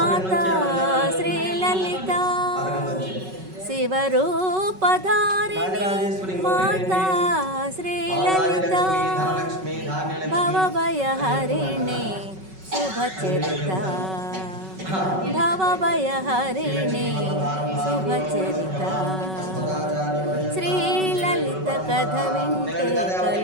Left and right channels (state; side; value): late; left; 5.3 ms